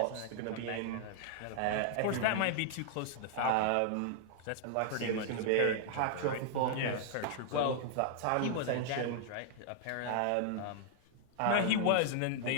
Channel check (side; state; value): both; different; correlation -0.01